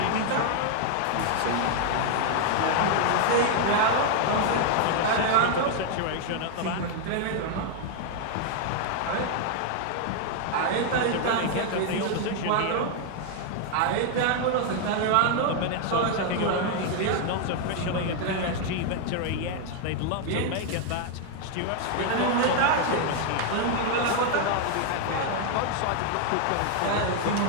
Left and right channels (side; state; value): both; different; correlation 0.00